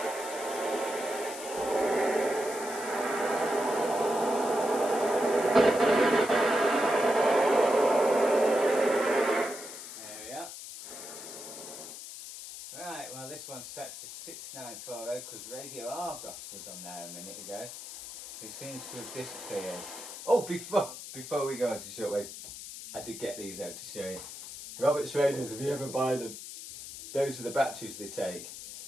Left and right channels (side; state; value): left; noise; hiss, 11 dB below the sound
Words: This one's set to 6940 because Radio Argos was on there a minute ago. It seems to have disappeared. Oh, before we go into shortwave, I did get these out to show you. Roberts radios, if you ever buy them, those are the batteries they take.